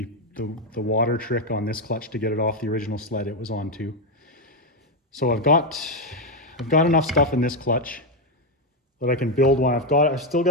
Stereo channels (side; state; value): both; normal; correlation 0.05